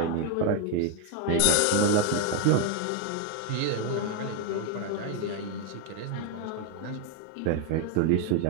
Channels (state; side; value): different; both; correlation 0.01